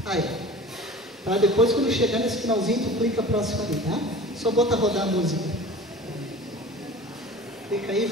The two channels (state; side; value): normal; both; correlation 0.40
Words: Aí, para depois, quando chegar nesse finalzinho, tu clica próximo ali, tá? Só bota rodar a música. Clica aí e